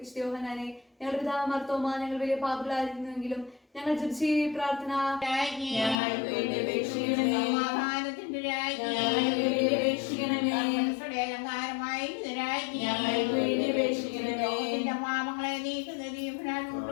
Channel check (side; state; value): right; drops out; at 6.0 s